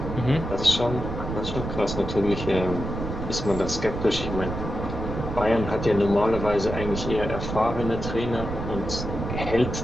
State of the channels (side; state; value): right; noise; rumble, 6 dB below the sound